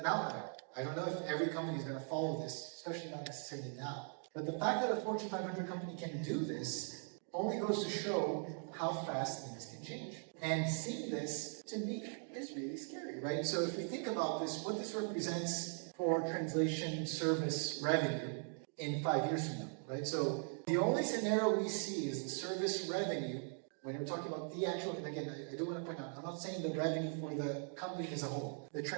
outlier. I don't know if every company is going to follow this, especially not necessarily now. But the fact that a Fortune 500 company can do this only goes to show how fast things can change. And seeing this, to me, is really scary, right? So if we think about this, what this represents for translation service revenue in 5 years from now, right? So the only scenario we see is the service revenue, when we're talking about the actual, and again, I do want to point out, I'm not saying the revenue for the company as a whole. The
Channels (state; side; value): silent; left; 51 dB below the other